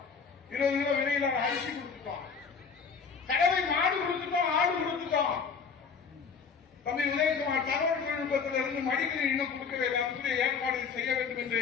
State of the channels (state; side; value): quieter; right; 5.8 dB